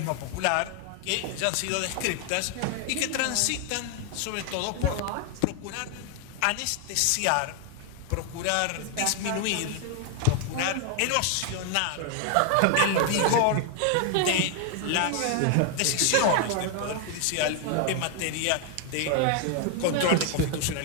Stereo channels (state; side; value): different; both; correlation 0.00